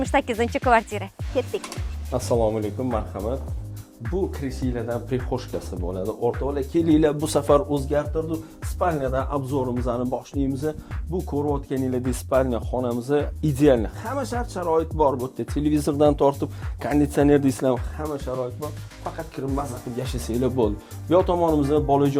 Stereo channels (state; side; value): identical; both; correlation 1.00